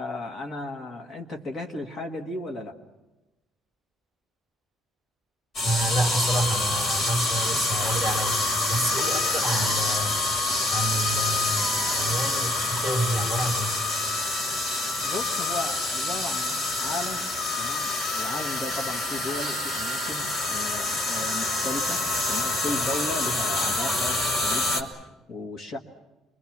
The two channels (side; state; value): both; normal; correlation 0.66